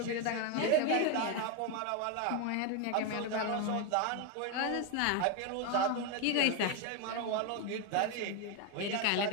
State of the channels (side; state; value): both; different; correlation 0.02